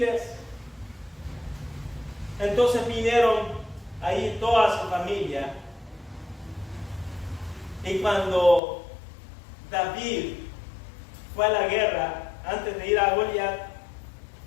Entonces vinieron ahí toda su familia, y cuando David fue a la guerra antes de ir a Goliat,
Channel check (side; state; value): right; drops out; at 8.6 s